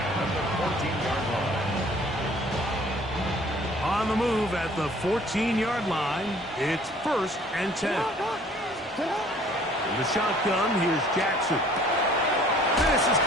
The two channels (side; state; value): both; normal; correlation 0.54